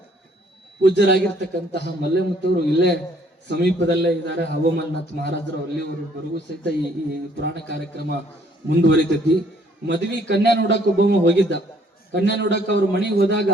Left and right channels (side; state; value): both; normal; correlation 0.63